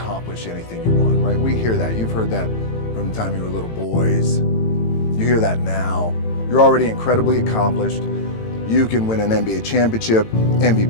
anything you want, right? We hear that, you've heard that from the time you were little boys. You hear that now. You're already incredibly accomplished. You can win an NBA championship,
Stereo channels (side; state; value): right; late; 18 ms